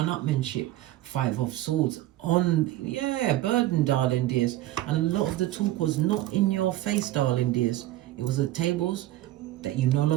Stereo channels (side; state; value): left; quieter; 15.3 dB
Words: 5 of Swords. Burden, darling dears. And a lot of the talk was not in your face, darling dears. It was at tables that you no